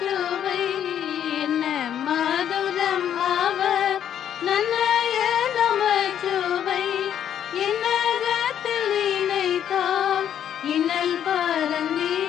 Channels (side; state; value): right; quieter; 9.7 dB